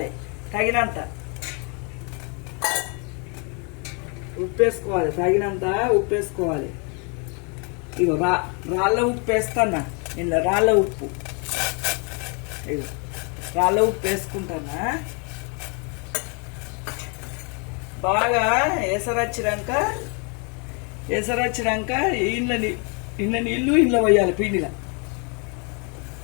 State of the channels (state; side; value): quieter; right; 35.6 dB